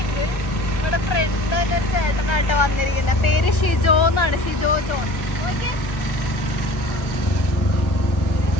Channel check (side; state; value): right; late; 1.3 ms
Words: ഇവിടെ ഫ്രണ്ട് തന്നെ ഒരു ചേട്ടനായിട്ട് വന്നിരിക്കുന്നത്. പേര് ഷിജോ എന്നാണ്. ഷിജോ ജോൺ.